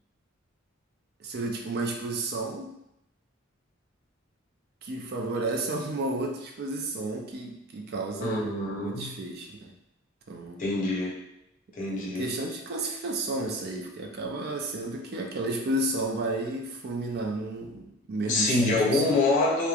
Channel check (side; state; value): both; normal; correlation 0.34